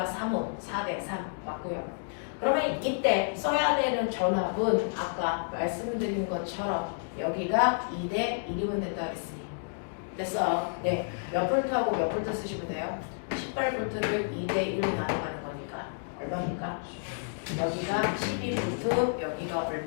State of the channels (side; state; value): right; silent; digital silence